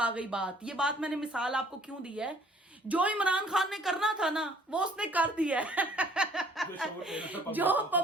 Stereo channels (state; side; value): normal; both; correlation 0.57